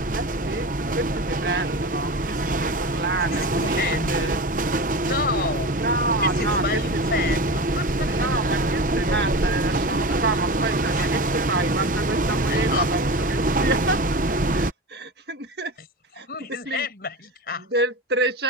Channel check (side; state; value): both; normal; correlation 0.27